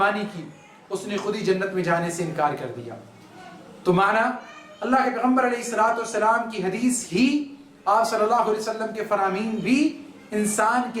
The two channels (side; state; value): both; identical; correlation 1.00